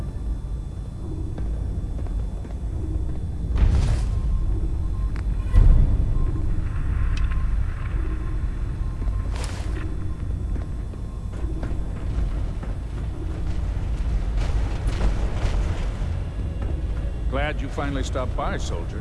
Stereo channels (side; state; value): both; identical; correlation 1.00